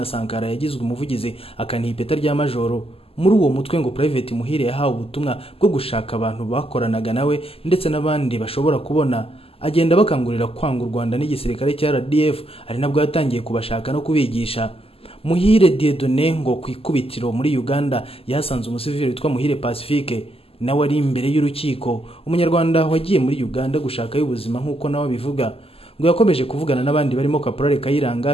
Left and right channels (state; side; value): late; right; 0.28 ms